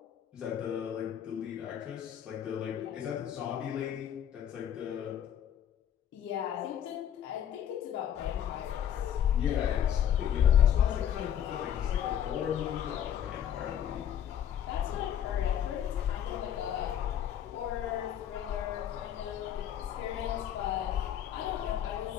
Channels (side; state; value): right; quieter; 9.9 dB